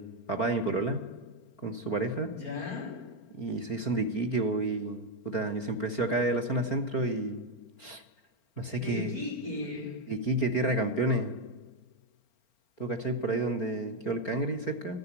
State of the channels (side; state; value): right; late; 4.4 ms